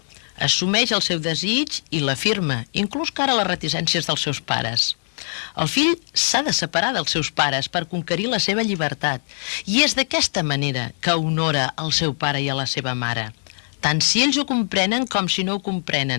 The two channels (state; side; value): silent; right; digital silence